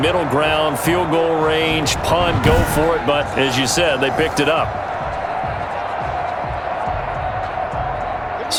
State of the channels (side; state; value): both; identical; correlation 1.00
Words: middle ground, field goal range, punt, go for it. But as you said, they picked it up.